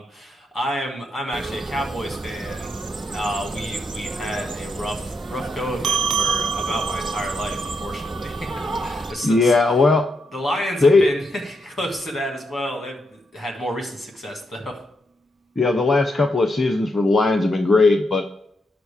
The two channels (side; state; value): both; normal; correlation 0.81